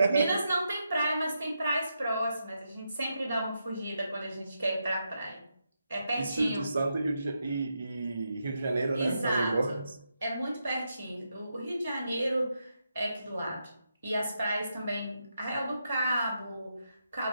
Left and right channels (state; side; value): inverted; both; correlation -0.84